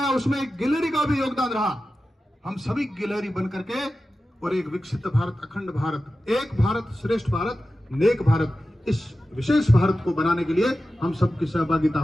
उसमें एक गिलहरी का भी योगदान रहा, हम सभी गिलहरी बन करके और एक विकसित भारत, अखंड भारत, एक भारत श्रेष्ठ भारत, नेक भारत, इस विशेष भारत को बनाने के लिए हम सबकी सहभागिता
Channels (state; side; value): normal; both; correlation 0.94